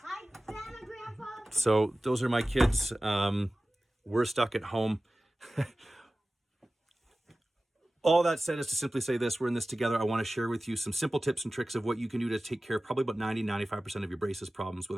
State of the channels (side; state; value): both; normal; correlation 0.96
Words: Grandma, Grandpa. So those are my kids. We're stuck at home. All that said is to simply say this: we're in this together. I want to share with you some simple tips and tricks of what you can do to take care of probably about 95% of your braces problems